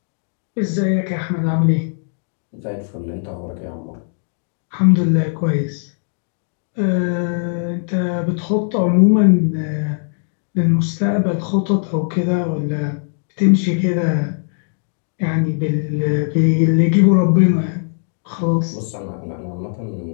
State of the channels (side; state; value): right; silent; digital silence